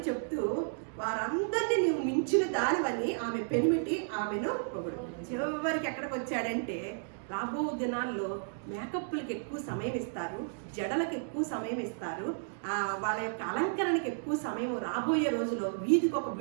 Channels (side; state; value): left; silent; digital silence